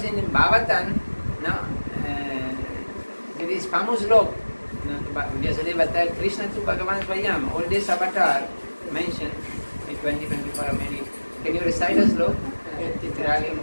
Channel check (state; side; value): inverted; both; correlation -1.00